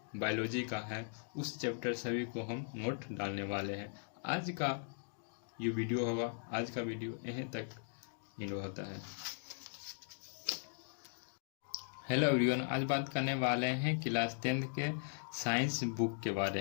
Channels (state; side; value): silent; right; digital silence